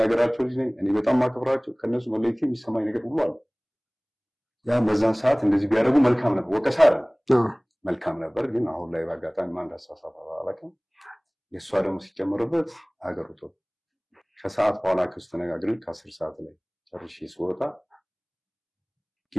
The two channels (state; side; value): identical; both; correlation 1.00